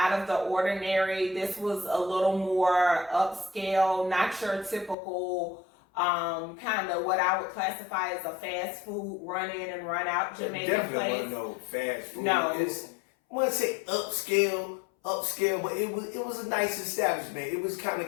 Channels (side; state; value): right; drops out; at 5.0 s